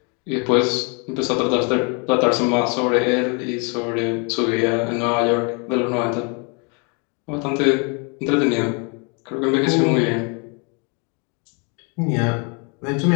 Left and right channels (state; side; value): quieter; right; 34.8 dB